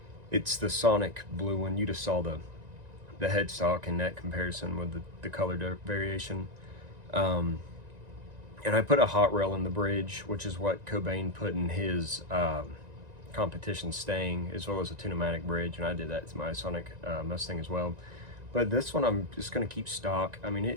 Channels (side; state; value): left; late; 1.9 ms